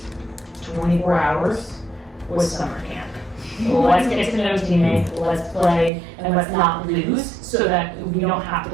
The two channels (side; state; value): left; drops out; at 5.9 s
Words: 24 hours was summer camp. Let's get to know teammates, let's play, and let's not lose so that we don't have